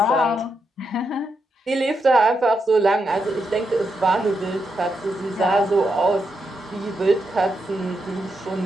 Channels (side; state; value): both; normal; correlation 0.83